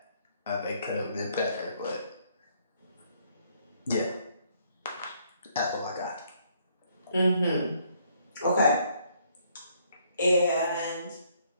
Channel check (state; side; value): inverted; both; correlation -0.67